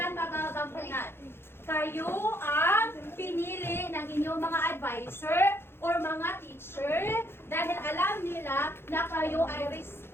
magagampanan? Kayo ang pinili ng inyong mga advisor or mga teacher dahil alam nila na kayo ay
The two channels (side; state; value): right; late; 0.11 ms